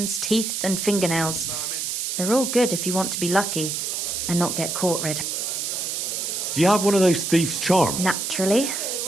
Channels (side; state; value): right; noise; hiss, 2 dB below the sound